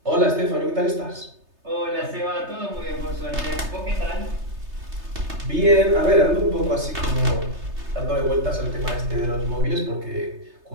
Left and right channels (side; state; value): left; late; 3.3 ms